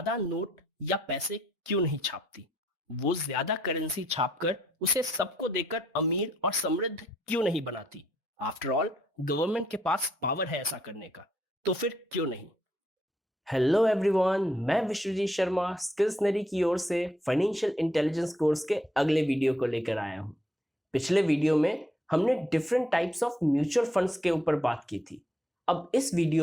नोट या पैसे क्यों नहीं छापती? वो ज्यादा करेंसी छापकर उसे सबको देकर अमीर और समृद्ध क्यों नहीं बनाती? आफ्टर ऑल, गवर्नमेंट के पास पावर है ऐसा करने का, तो फिर क्यों नहीं? हेलो एवरीवन, मैं विश्वजीत शर्मा स्किल्सनरी की ओर से फाइनेंशियल इंटेलिजेंस कोर्स के अगले वीडियो को लेकर आया हूं। पिछले वीडियो में हमने different types of mutual funds के ऊपर बात की थी। अब इस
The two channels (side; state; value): both; normal; correlation 0.73